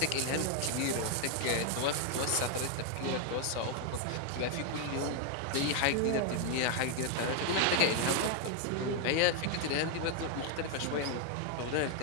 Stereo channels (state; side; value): different; both; correlation 0.00